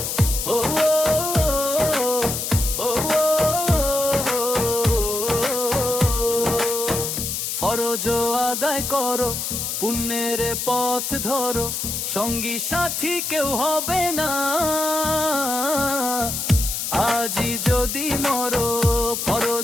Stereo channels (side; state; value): left; noise; hiss, 3 dB below the sound